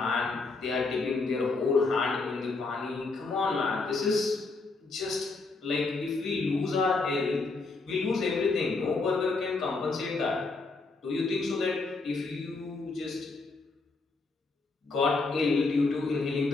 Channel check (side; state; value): right; quieter; 3.8 dB